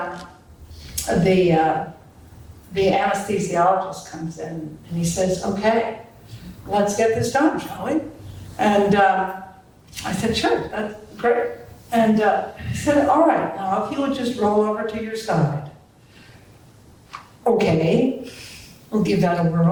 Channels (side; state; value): both; identical; correlation 1.00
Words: the anesthesiologist comes in and he says, okay, let's get this done, shall we? And I said, sure, that's great. And he said, all right, now if you would just roll over to your side. Okay, we'll give that a